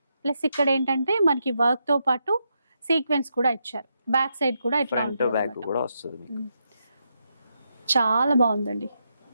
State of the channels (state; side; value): inverted; both; correlation -0.83